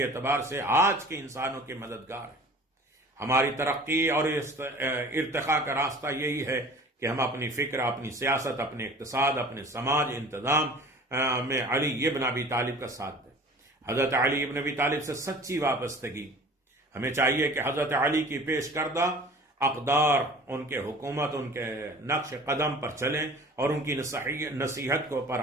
اعتبار سے آج کے انسانوں کے مددگار ہے۔ ہماری ترقی اور ارتقاء کا راستہ یہی ہے کہ ہم اپنی فکر، اپنی سیاست، اپنے اقتصاد، اپنے سماج انتظام میں علی ابن ابی طالب کا ساتھ دیں۔ حضرت علی ابن ابی طالب سے سچی وابستگی، ہمیں چاہیے کہ حضرت علی کی پیش کردہ اقدار، ان کے حکومت، ان کے نقش قدم پر چلیں اور ان کی نصیحت کو پر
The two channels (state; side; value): normal; both; correlation 0.44